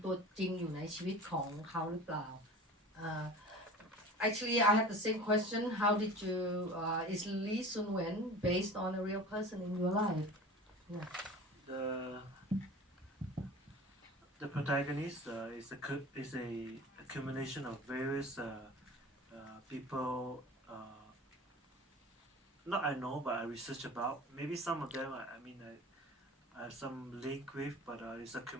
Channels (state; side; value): normal; both; correlation 0.38